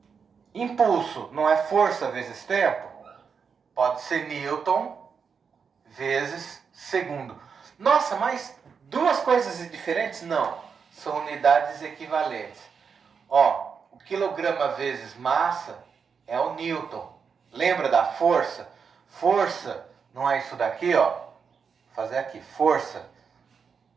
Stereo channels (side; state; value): left; quieter; 6.1 dB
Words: Impulso não é força vezes tempo? Pode ser Newton vezes segundo. Nossa, mas duas coisas diferentes? Não. São unidades equivalentes. Ó, o quilograma vezes massa é o Newton. Lembra da força? Força não é isso daqui, ó. Vou fazer aqui. Força